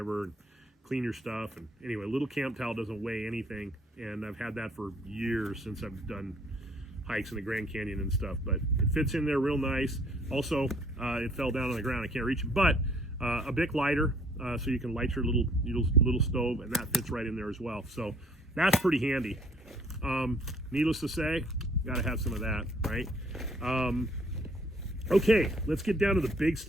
and clean your stuff. And anyway, a little camp towel doesn't weigh anything, and I've had that for years since I've done hikes in the Grand Canyon and stuff, but it fits in there real nice. Also, it fell down on the ground. I can't reach it, but a Bic lighter, so you can light your little stove, and that fits right in there as well. So that's pretty handy. Needless to say, got to have some of that, right? Okay, let's get down to the big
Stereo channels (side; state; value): both; normal; correlation 0.61